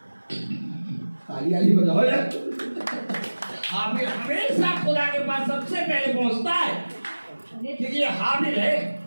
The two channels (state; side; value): inverted; both; correlation -1.00